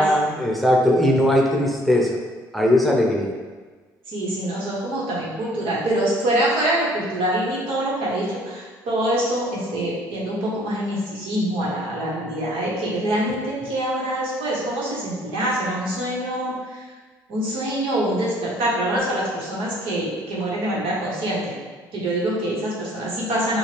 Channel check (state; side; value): normal; both; correlation 0.59